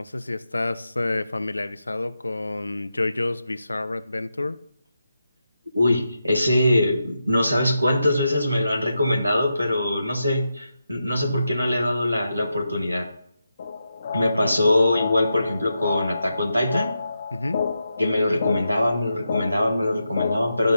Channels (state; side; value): inverted; both; correlation -0.87